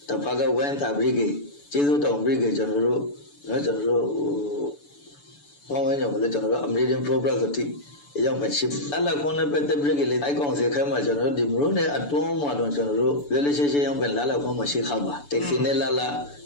တဖက်ကဝမ်းသာဘရိကေကျေးဇူးတောင်ဘရိကေကျွန်တော်တို့ပေါင်းဝန်းကျင်ကိုလည်းကျွန်တော်တို့ American Progress ဆိုတိအရောက်ပဲရှိအလခွန်နဲ့ပတ်သက်ပြီးလေအိုက်ကောင်စေခိုင်းမှာကျွန်တော်တို့ဒီမလို့နဲ့အတွန်းမှာတော့ကျွန်တော်တို့လေလေရှေ့ရောက်ပဲလာခွန်မှာရှိခါပါတက်စီနဲ့လာ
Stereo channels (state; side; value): late; right; 6.9 ms